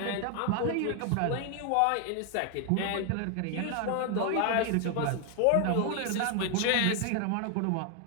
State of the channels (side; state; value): both; different; correlation 0.00